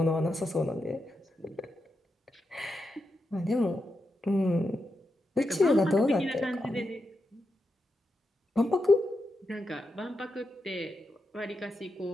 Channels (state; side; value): normal; both; correlation 0.86